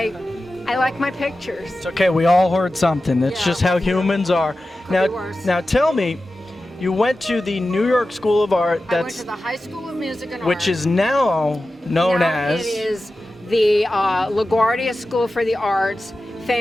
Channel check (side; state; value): both; normal; correlation 0.94